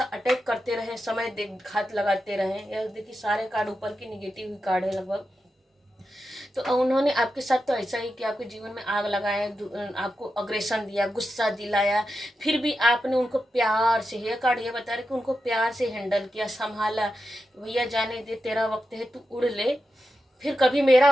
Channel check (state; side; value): normal; both; correlation 0.89